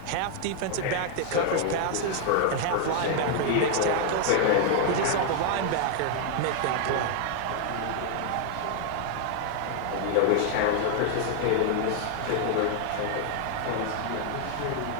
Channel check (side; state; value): both; different; correlation 0.00